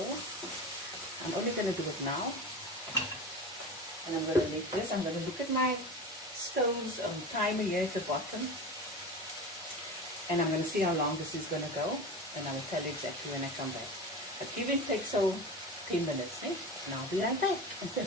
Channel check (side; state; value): both; normal; correlation 0.29